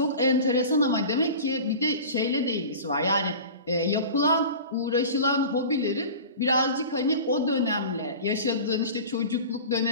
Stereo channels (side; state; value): both; inverted; correlation -0.36